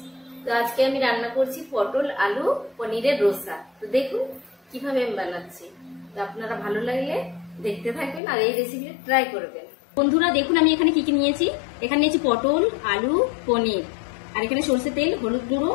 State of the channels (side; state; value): right; drops out; at 8.2 s